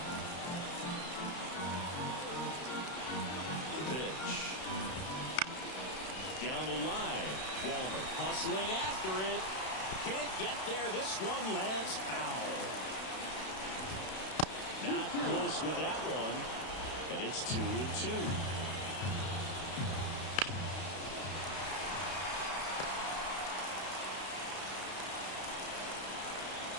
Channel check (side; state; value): right; late; 32 ms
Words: The pitch. Down the line. Walner hustling after it. Can't get there. This one lands foul. Not close with that one. And it's 2-2.